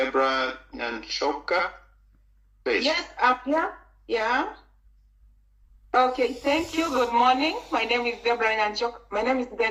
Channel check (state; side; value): identical; both; correlation 1.00